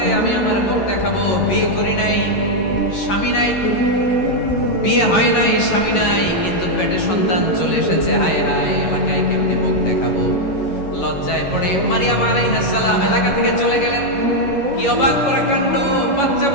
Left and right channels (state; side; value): late; right; 11 ms